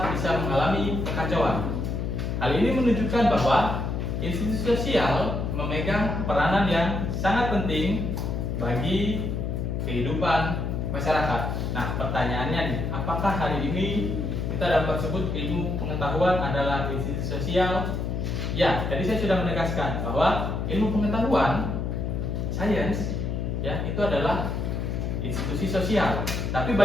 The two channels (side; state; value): left; noise; hum, 2 dB below the sound